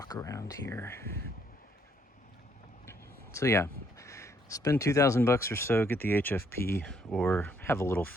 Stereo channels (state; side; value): normal; both; correlation 0.69